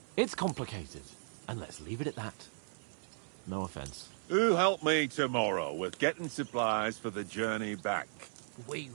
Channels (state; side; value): silent; left; 54 dB below the other